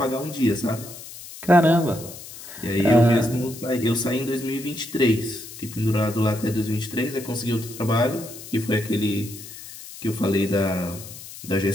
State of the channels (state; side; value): noise; left; hiss, 14 dB below the sound